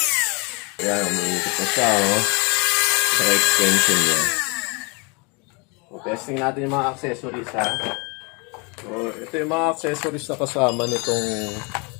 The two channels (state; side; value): quieter; right; 31.3 dB